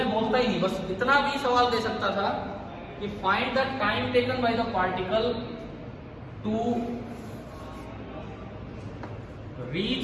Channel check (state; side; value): identical; both; correlation 1.00